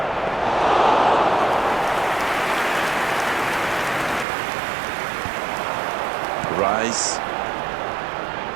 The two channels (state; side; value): drops out; left; at 4.2 s